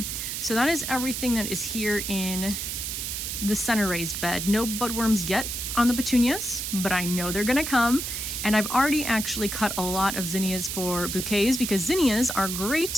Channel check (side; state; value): right; noise; hiss, 4 dB below the sound